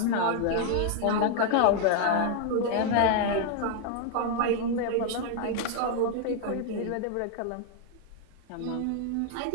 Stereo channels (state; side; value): different; both; correlation 0.00